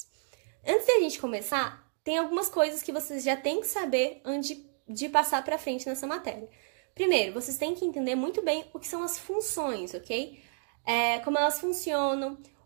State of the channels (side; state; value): left; silent; 56 dB below the other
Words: Antes da gente começar, tem algumas coisas que vocês já têm que saber antes de passar para frente nessa matéria. Primeiro, vocês têm que entender muito bem o que são as funções, ok? Como elas funcionam,